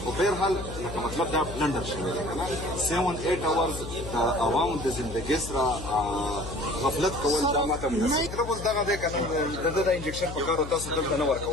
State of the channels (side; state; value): left; noise; hum, 10 dB below the sound